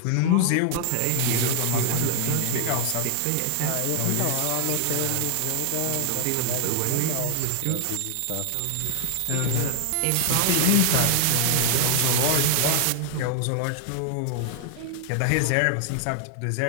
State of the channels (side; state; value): both; different; correlation 0.00